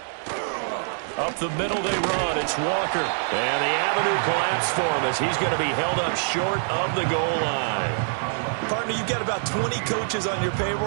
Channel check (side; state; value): left; silent; digital silence